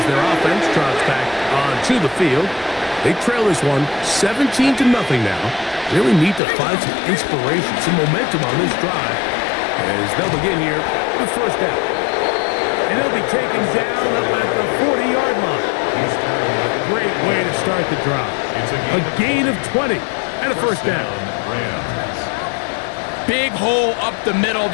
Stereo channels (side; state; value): right; drops out; at 6.4 s